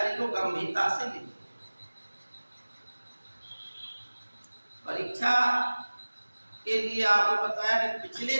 को गंभीरता से लीजिए। परीक्षा के लिए आपको बताया कि पिछले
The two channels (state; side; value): inverted; both; correlation -1.00